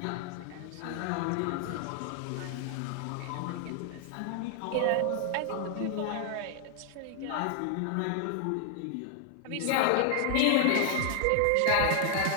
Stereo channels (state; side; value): different; both; correlation 0.00